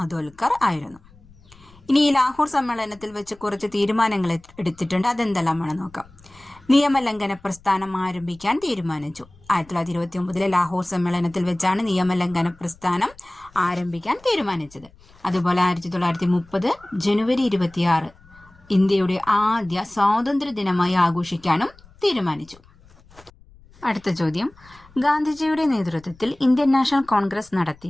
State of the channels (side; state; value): left; noise; rumble, 26 dB below the sound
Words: ആയിരുന്നു. ഇനി ഈ ലാഹോർ സമ്മേളനത്തിൽ വെച്ച് കുറച്ച് തീരുമാനങ്ങൾ എടുത്തിട്ടുണ്ട്. അതെന്തെല്ലാമാണ് നോക്കാം. നിയമലംഘന പ്രസ്ഥാനം ആരംഭിക്കാൻ തീരുമാനിച്ചു. 1929 ലാഹോർ സമ്മേളനത്തിൽ വെച്ചാണ് നിയമലംഘന പ്രസ്ഥാനം ആരംഭിക്കാൻ തീരുമാനിച്ചത്. അതുപോലെ 1930 ജനുവരി 26 ഇന്ത്യയുടെ ആദ്യ സ്വാതന്ത്ര്യ ദിനമായി ആഘോഷിക്കാനും തീരുമാനിച്ചു. അടുത്ത ചോദ്യം, ഗാന്ധിജിയുടെ നേതൃത്വത്തിൽ ഇന്ത്യൻ നാഷണൽ കോൺഗ്രസ്